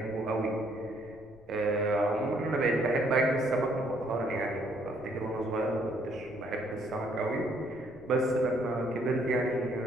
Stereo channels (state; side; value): noise; left; rumble, 24 dB below the sound